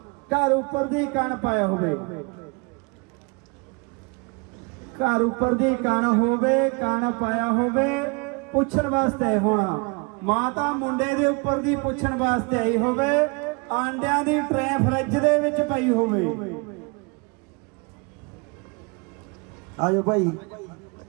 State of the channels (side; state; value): left; quieter; 30.8 dB